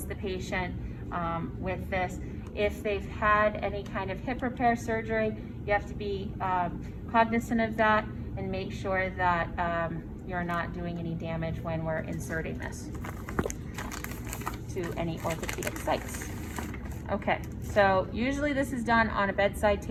the patient with this. If they've had any kind of hip repair surgery, you have to be cognizant of that and make sure that you're not doing any damage when we're inserting this to any orthopedic sites. Okay, so usually this is done on a bedside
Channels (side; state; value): both; identical; correlation 1.00